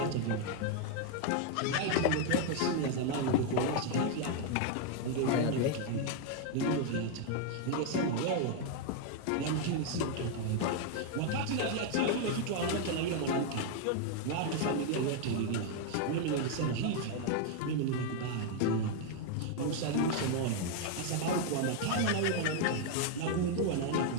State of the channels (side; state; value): both; different; correlation 0.00